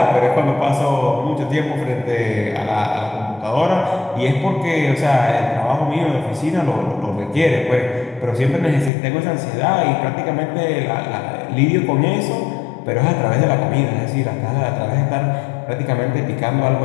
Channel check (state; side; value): drops out; right; at 8.9 s